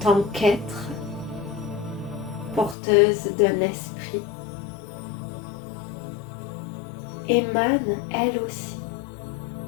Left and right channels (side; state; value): right; drops out; at 2.8 s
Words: qu'être, porteuse d'un esprit, émane elle aussi